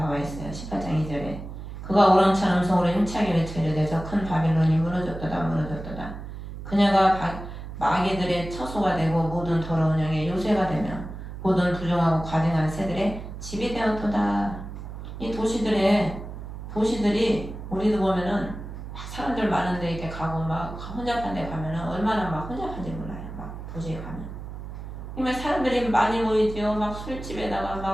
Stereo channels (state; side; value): noise; right; hum, 10 dB below the sound